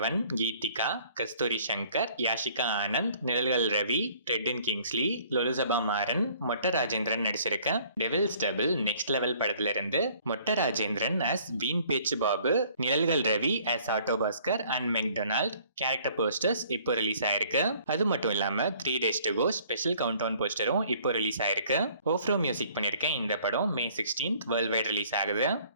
கீதிகா, கஸ்தூரி சங்கர், யாஷிகா ஆனந்த், நிழல்கள் ரவி, ரெட்டின் கிங்ஸ்லி, லொலுசபா மாறன், மொட்ட ராஜேந்திரன் நடிச்சிருக்க டெவில்ஸ் டபுள் நெக்ஸ்ட் லெவல் படத்துல இருந்து Motta Rajendran as Veen Pechu Babu, Nizhalgal Ravi as auto Bhaskar and McDonald character posters இப்போ ரிலீஸ் ஆயிருக்கு. அது மட்டும் இல்லாம 3 days to go special countdown போஸ்டரும் இப்போ ரிலீஸ் ஆயிருக்கு. ஓஃப்ரோ மியூசிக் பண்ணிருக்கேன். இந்த படம் May 16th world wide release ஆகுது.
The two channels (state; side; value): inverted; both; correlation -0.57